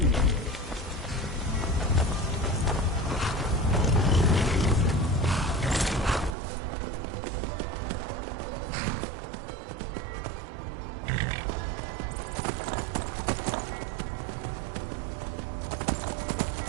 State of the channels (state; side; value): drops out; left; at 6.3 s